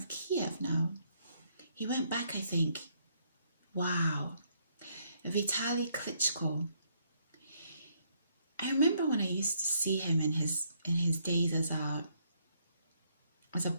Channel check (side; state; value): both; inverted; correlation -0.71